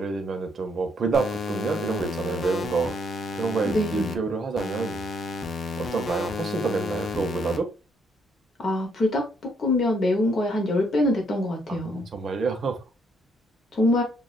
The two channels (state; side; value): normal; both; correlation 0.71